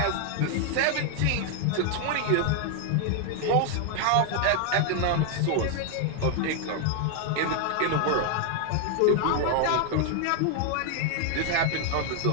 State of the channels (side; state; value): both; different; correlation 0.00